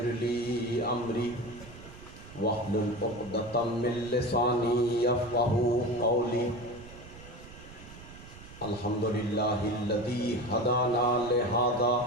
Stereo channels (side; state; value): right; noise; rumble, 17 dB below the sound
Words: لي أمري واحلل عقدة من لساني يفقهوا قولي. الحمد لله الذي هدانا لهذا